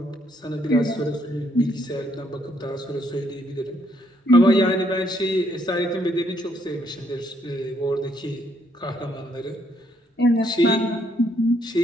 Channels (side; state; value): both; normal; correlation 0.71